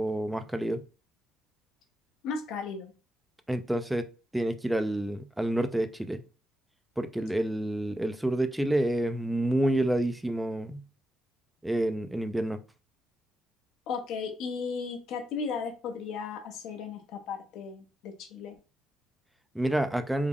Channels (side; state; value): both; normal; correlation 0.87